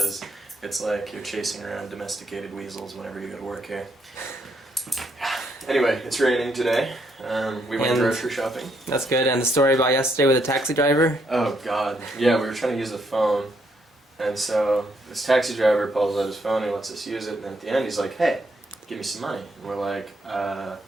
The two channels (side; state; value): both; normal; correlation 0.74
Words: it's like you're chasing around domesticated weasels whenever you go to work here. Anyway, it's raining today. We went grocery shopping. That's good. And the story about yesterday with the taxi driver? Oh god. Yeah, we were trying to use the phone. And so this taxi driver pulls out his phone and lets us use it, and then at the end he's like, hey, give me some money. And we're like,